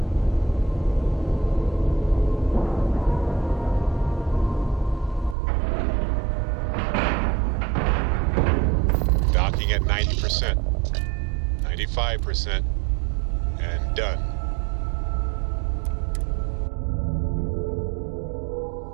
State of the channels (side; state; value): left; drops out; at 5.4 s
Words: Docking at 90%. 95%. And done.